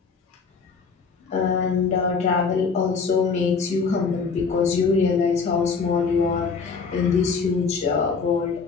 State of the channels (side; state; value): right; quieter; 5.1 dB